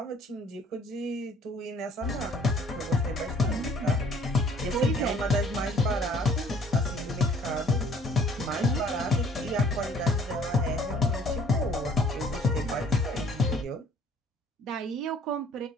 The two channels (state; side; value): normal; both; correlation 0.56